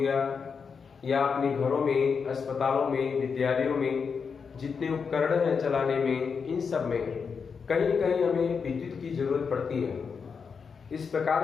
या अपने घरों में, अस्पतालों में, विद्यालयों में जितने उपकरण हैं चलाने में, इन सब में कहीं न कहीं हमें विद्युत की जरूरत पड़ती है। इस प्रकार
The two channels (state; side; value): quieter; right; 5.8 dB